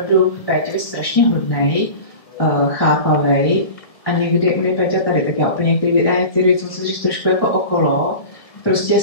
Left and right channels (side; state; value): right; late; 1.7 ms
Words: v Péťovi strašně hodnej, chápavej a někdy u mě Péťa tady, tak já úplně některé věci musím říct trošku jako okolo. Prostě